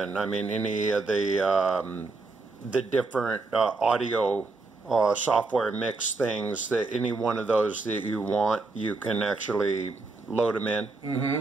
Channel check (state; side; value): quieter; left; 3.7 dB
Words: in, I mean any of the different audio software mix things, that any one of those that you want, you can actually load them in?